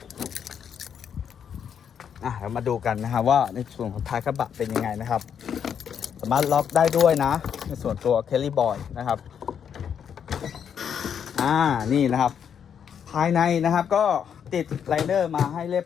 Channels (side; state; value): right; quieter; 8.0 dB